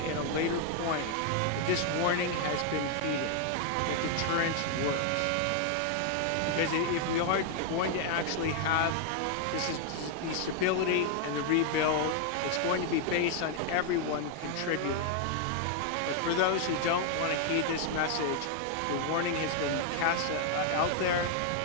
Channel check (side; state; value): both; different; correlation 0.00